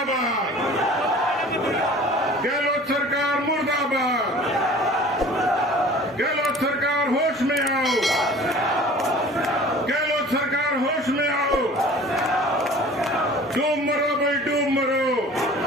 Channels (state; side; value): normal; both; correlation 0.45